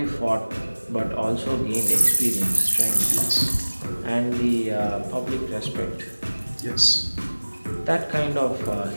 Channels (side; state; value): both; inverted; correlation -1.00